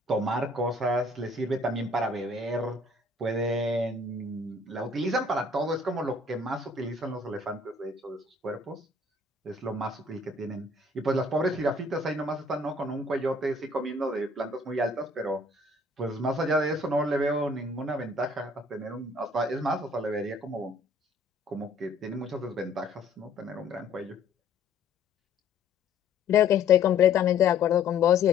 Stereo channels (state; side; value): quieter; right; 3.3 dB